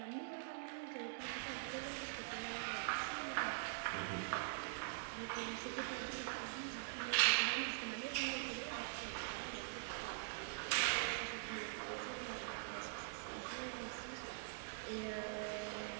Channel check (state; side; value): silent; left; digital silence